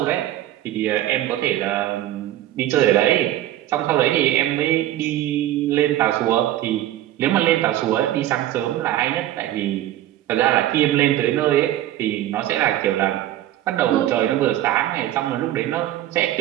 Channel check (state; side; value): quieter; left; 13.6 dB